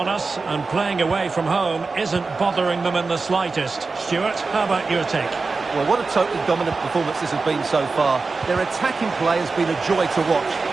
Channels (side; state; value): left; quieter; 4.1 dB